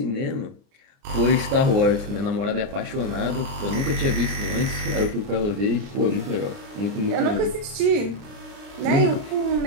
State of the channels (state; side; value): late; left; 30 ms